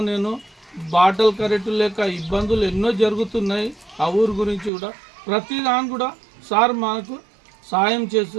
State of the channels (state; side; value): drops out; left; at 4.7 s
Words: నేను బాటలు కరెక్ట్ లేక ఇబ్బందులు ఎన్నో జరుగుతున్నాయి. ఆ ఊరు గురించి కూడా ప్రతి దాని కూడా సార్ మాకు సాయం